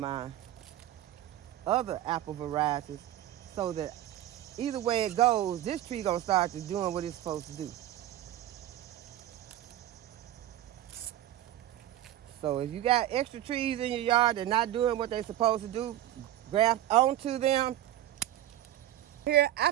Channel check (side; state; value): left; quieter; 13.2 dB